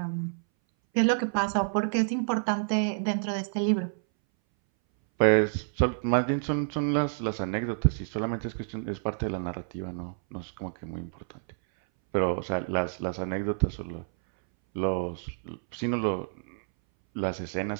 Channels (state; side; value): silent; left; 59 dB below the other